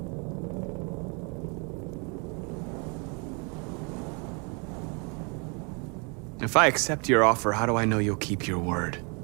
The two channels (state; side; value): quieter; left; 33.6 dB